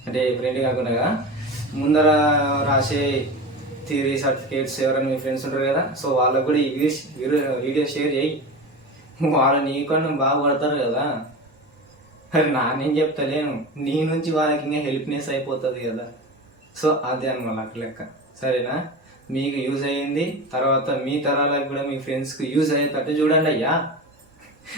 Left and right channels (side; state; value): both; normal; correlation 0.28